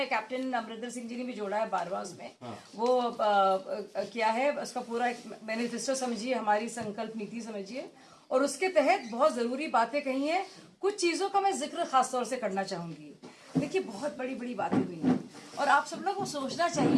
कैप्टन अमरिंदर सिंह जी ने भी जोड़ा है 12वां उसमें। वो किया है, उसका पूरा एक मैनिफेस्टो समझिए, हमारी संकल्प नीति समझिए, और उसके तहत बहुत जरूरी बातें कही हैं। कुछ चीजों का मैं जिक्र खास तौर से करना चाहूंगी। देखिए, बहुत बड़ी बड़ी बातें हुई हैं, और आप सब लोग को सोचना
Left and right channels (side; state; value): both; identical; correlation 1.00